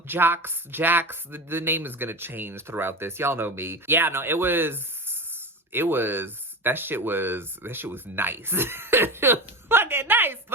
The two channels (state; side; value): normal; both; correlation 0.24